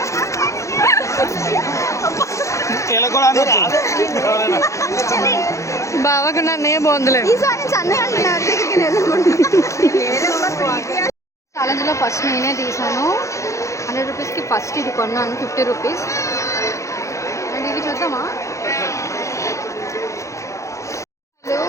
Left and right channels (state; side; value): late; right; 0.15 ms